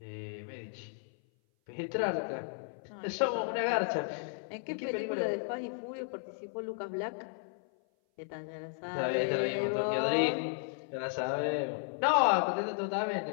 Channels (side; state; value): right; silent; 55 dB below the other